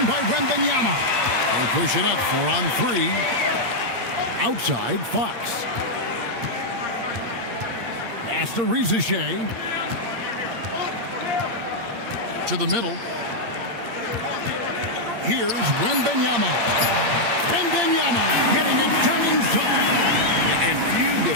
by Wembanyama. They push it up 4 on 3. Outside, Fox. Pass to Rizachet. To the middle. Here's Wembanyama. Wembanyama getting it done inside. And few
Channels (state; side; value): late; left; 8.7 ms